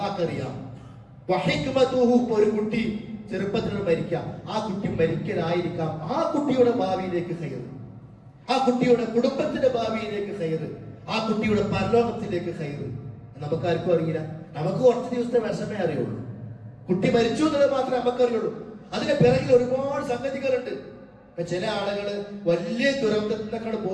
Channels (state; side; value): identical; both; correlation 1.00